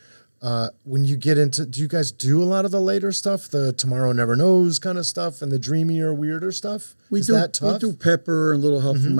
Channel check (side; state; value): both; inverted; correlation -1.00